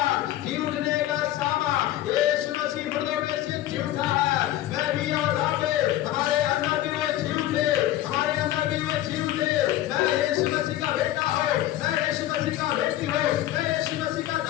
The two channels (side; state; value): right; quieter; 13.9 dB